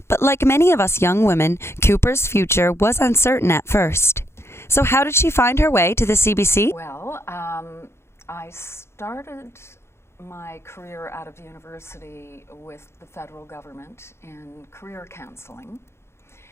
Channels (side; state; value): right; late; 0.12 ms